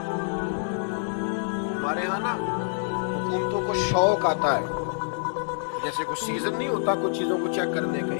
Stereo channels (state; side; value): silent; right; 60 dB below the other